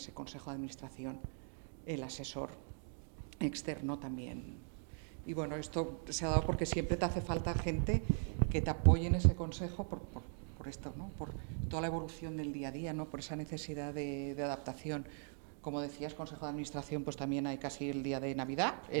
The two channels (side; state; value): left; silent; 51 dB below the other